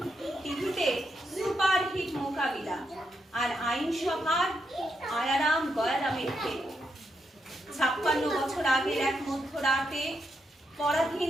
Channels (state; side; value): normal; both; correlation 0.82